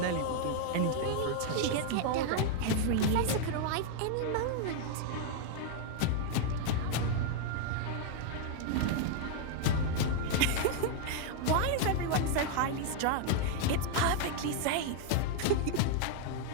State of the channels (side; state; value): both; different; correlation 0.00